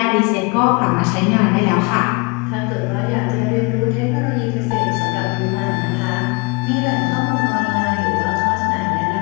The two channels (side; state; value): right; quieter; 29.6 dB